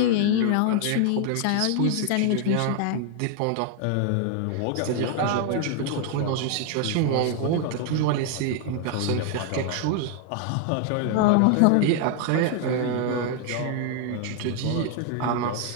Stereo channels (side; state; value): both; different; correlation 0.00